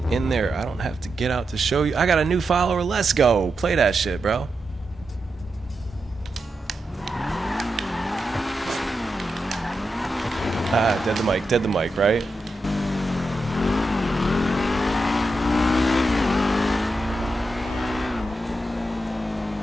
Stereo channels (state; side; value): normal; both; correlation 0.87